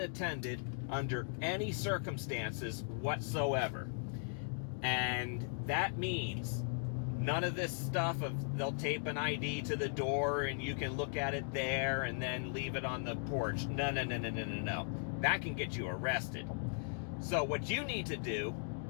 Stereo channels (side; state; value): right; silent; digital silence